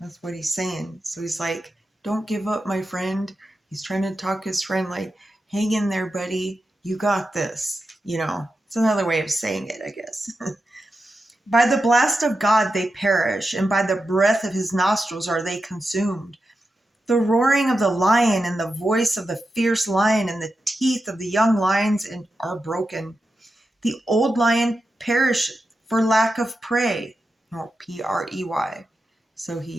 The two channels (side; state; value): both; normal; correlation 0.90